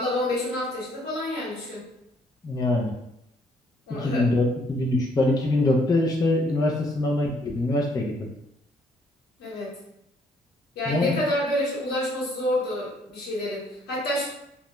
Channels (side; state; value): both; normal; correlation 0.66